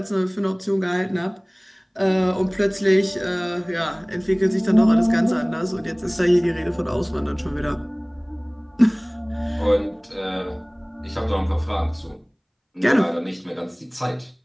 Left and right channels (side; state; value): both; identical; correlation 1.00